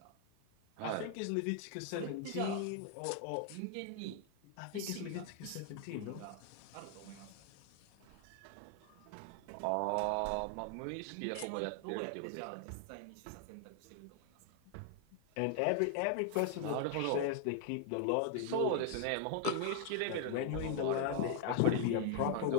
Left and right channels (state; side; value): different; both; correlation 0.00